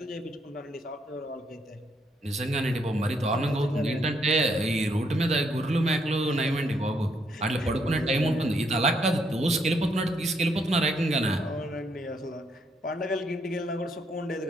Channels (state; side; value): normal; both; correlation 0.74